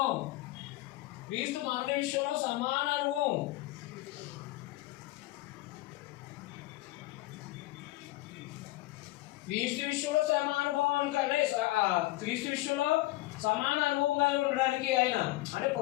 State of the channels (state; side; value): quieter; right; 18.6 dB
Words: క్రీస్తు మరణ విషయంలో సమాన అనుభవం. క్రీస్తు విషయంలో సమాన అనుభవం కానీ క్రీస్తు విషయంలో సమాన అనుభవం కలిగి ఉండడానికి ఆయన అంటే